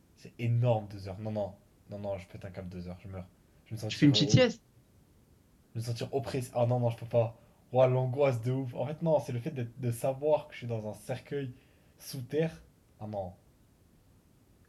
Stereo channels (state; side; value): identical; both; correlation 1.00